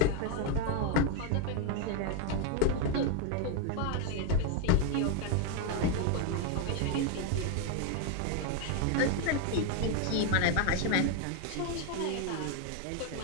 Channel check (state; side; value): different; both; correlation 0.00